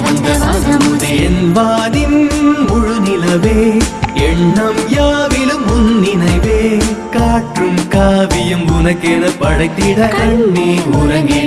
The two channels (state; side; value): identical; both; correlation 1.00